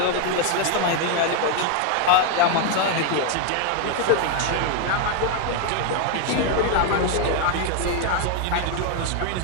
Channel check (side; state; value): both; different; correlation 0.01